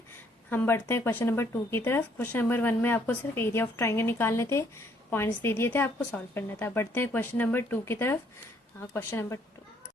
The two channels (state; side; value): normal; both; correlation 0.66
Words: हम बढ़ते हैं क्वेश्चन नंबर 2 की तरफ। क्वेश्चन नंबर 1 में आपको सिर्फ एरिया ऑफ ट्राइंगल निकालने थे, पॉइंट्स दे दिए थे, आपको सॉल्व करना था। बढ़ते हैं क्वेश्चन नंबर 2 की तरफ। हाँ, क्वेश्चन नंबर 2।